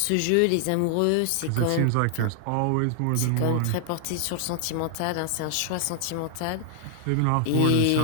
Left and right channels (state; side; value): different; both; correlation 0.00